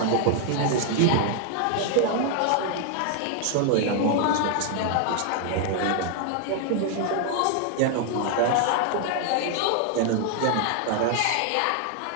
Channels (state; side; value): different; both; correlation 0.00